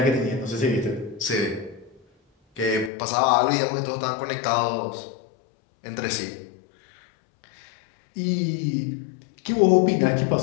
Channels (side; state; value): right; drops out; at 2.9 s